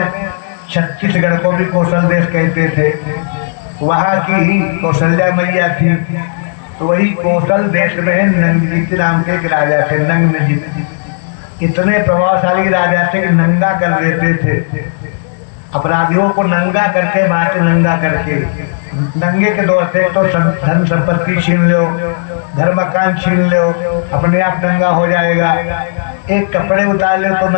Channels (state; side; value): silent; right; digital silence